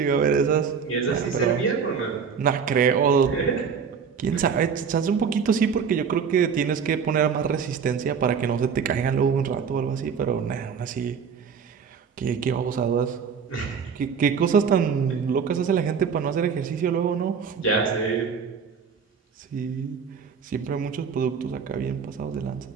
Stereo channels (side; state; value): left; quieter; 6.4 dB